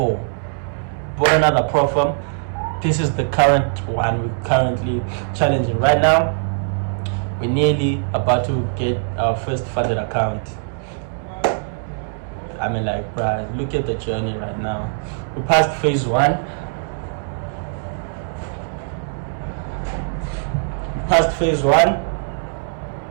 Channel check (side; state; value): left; silent; digital silence